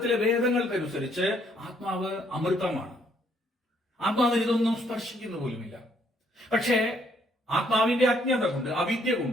വേദങ്ങൾക്കനുസരിച്ച് ആത്മാവ് അമൃതമാണ്. ആത്മാവിന് ഇതൊന്നും സ്പർശിക്കുന്ന പോലുമില്ല. പക്ഷേ ആത്മാവിന്റെ അജ്ഞത കൊണ്ട്, അവിദ്യ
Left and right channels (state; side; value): normal; both; correlation 0.68